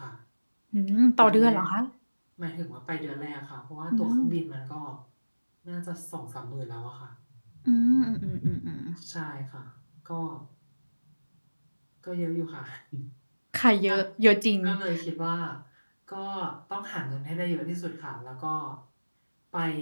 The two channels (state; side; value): inverted; both; correlation -1.00